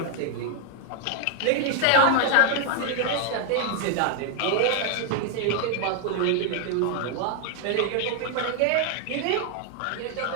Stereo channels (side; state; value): both; different; correlation 0.00